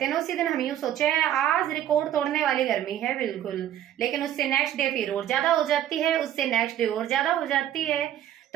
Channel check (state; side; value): quieter; left; 11.5 dB